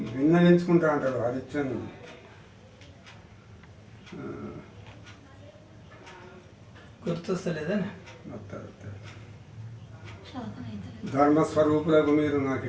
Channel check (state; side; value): identical; both; correlation 1.00